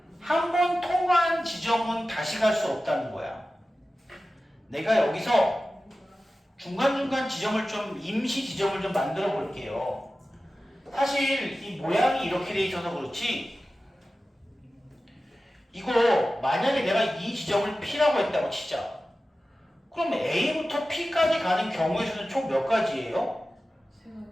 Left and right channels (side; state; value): both; normal; correlation 0.95